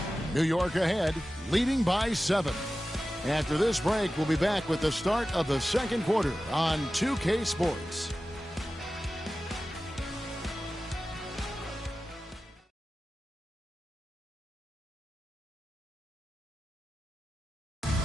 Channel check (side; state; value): both; normal; correlation 0.94